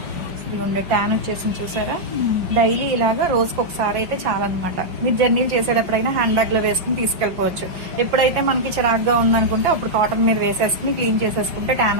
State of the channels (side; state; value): left; late; 5.6 ms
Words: ఇదిగోండి ట్యాన్ వచ్చేసింది చూసారా. డైలీ ఇలాగా రోజుకి ఒకసారి అయితే చాలన్నమాట. మీరు జర్నీలు చేసేటప్పుడైనా హ్యాండ్ బ్యాగ్ లో వేసుకుని తీసుకెళ్లిపోవచ్చు. ఎప్పుడైతే మనకి చిరాగ్గా ఉందనుకుంటే అప్పుడు కాటన్ మీద వేసేసుకుని క్లీన్ చేసేసుకుంటే